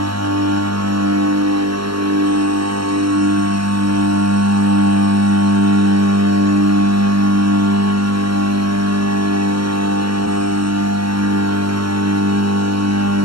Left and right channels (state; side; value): late; left; 0.73 ms